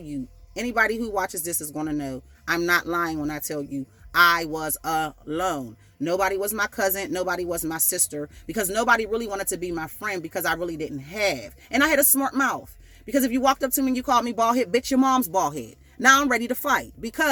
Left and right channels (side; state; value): both; identical; correlation 1.00